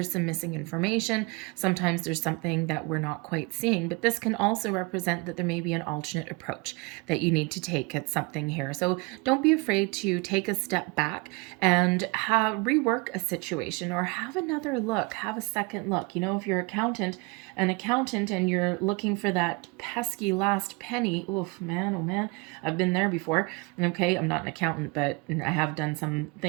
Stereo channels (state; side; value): quieter; left; 27.9 dB